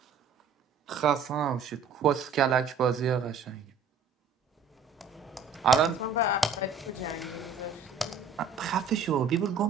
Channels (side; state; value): left; quieter; 5.0 dB